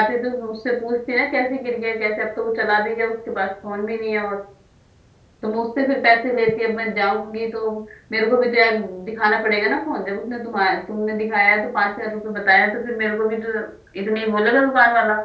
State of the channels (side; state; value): both; identical; correlation 1.00